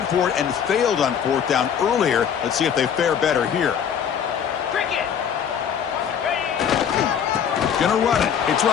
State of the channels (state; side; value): quieter; right; 8.1 dB